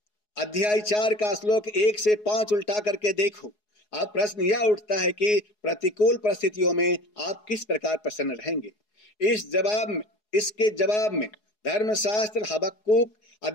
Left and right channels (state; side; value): late; right; 4.7 ms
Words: अध्याय 4 का श्लोक 1 से 5 उल्टा करके देखो। अब प्रश्न यह उठता है कि प्रतिकूल परिस्थितियों में आप किस प्रकार प्रसन्न रहेंगे? इसके जवाब में धर्मशास्त्र हबक्कुक